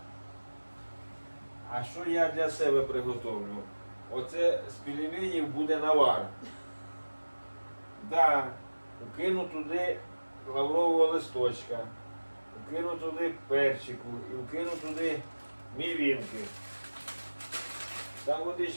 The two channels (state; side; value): inverted; both; correlation -1.00